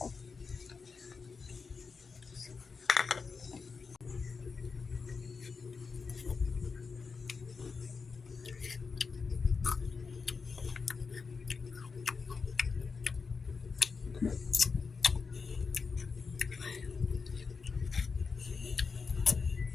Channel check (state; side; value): quieter; right; 5.0 dB